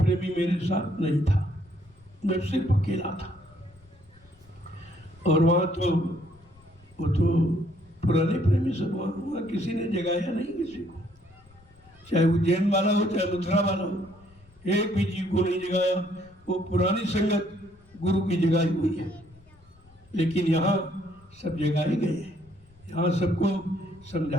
मेरे साथ नहीं था, मैं सिर्फ अकेला था। और वहाँ तो वो तो पुराने प्रेमी सब वहाँ किसी ने जगाया नहीं किसी को, चाहे उज्जैन वाला हो चाहे मथुरा वाला हो, एक भी जीव को नहीं जगाया। वो पुरानी संगत गुरु की जगाई हुई है। लेकिन यहाँ सब जगाए गए हैं, यहाँ सबको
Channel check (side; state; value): left; noise; rumble, 28 dB below the sound